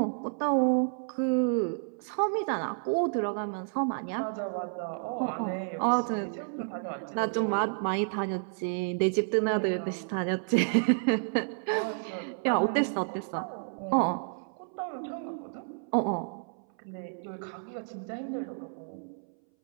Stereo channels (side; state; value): left; silent; 57 dB below the other